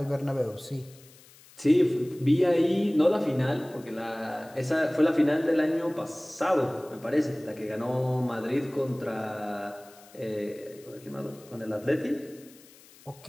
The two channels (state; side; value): noise; left; hiss, 24 dB below the sound